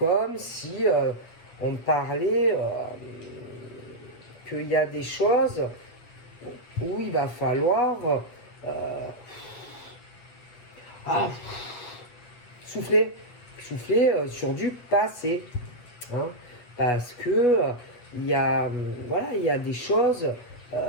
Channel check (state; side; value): late; right; 8.2 ms